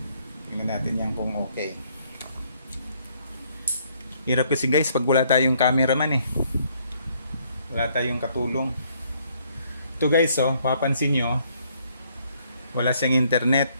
tingnan natin yan kung okay. Hirap kasi guys pag wala tayong cameraman eh. Wala tayong katulong. Ito guys, oh, papansin nyo, wala siyang internet.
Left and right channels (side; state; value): both; inverted; correlation -0.68